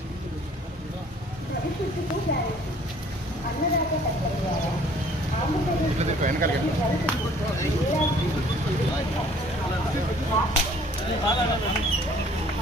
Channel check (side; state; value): both; normal; correlation 0.55